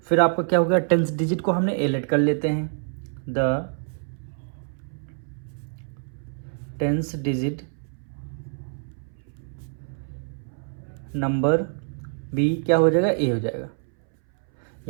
फिर आपका क्या हो गया? टेंस डिजिट को हमने ए लेट कर लेते हैं। The tens digit number B क्या हो जाएगा? ए हो जाएगा।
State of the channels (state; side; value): silent; left; 61 dB below the other